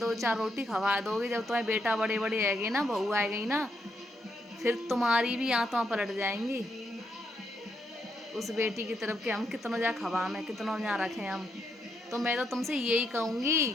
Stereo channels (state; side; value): normal; both; correlation 0.79